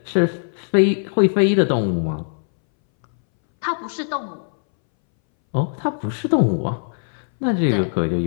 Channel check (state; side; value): silent; right; 63 dB below the other